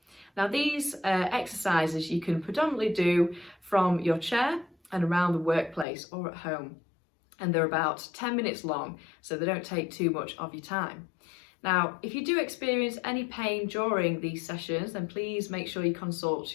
Now, these exercises you can predominantly do from your chair and around the workplace or at home, and they're about 10 minutes long, so they don't take too much of your time. Now, if you do experience any pain during these sessions, then please make sure you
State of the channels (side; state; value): right; drops out; at 5.9 s